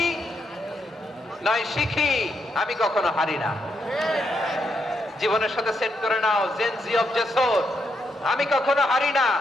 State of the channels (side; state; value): both; normal; correlation 0.80